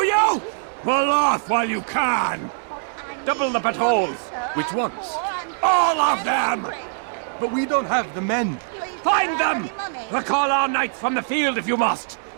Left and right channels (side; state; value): left; silent; 64 dB below the other